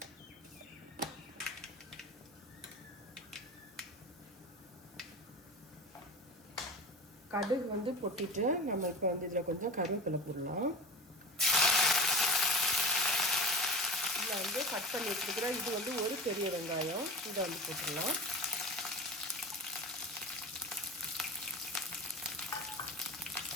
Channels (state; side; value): normal; both; correlation 0.34